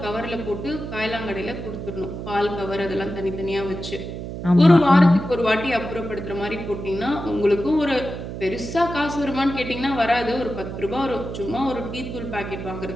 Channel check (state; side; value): noise; right; hum, 7 dB below the sound